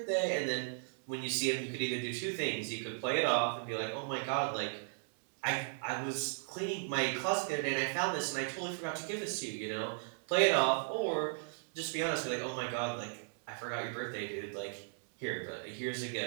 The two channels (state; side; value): silent; left; digital silence